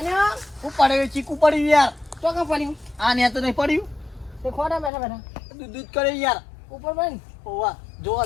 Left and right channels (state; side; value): drops out; right; at 4.9 s